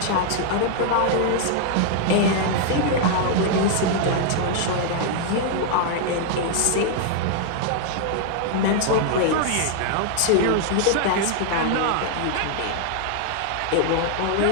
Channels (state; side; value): different; both; correlation 0.00